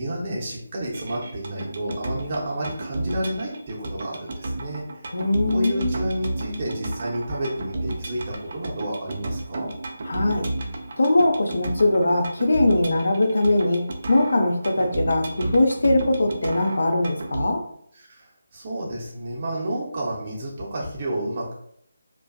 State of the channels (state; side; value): inverted; both; correlation -0.91